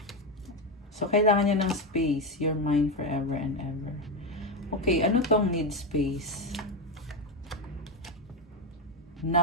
So, kailangan niya ng space. You're mine forever and ever. Okay, ano tong need space?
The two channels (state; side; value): normal; both; correlation 0.10